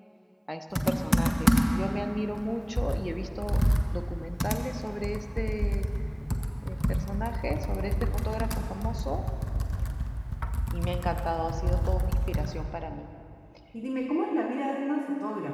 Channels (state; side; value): identical; both; correlation 1.00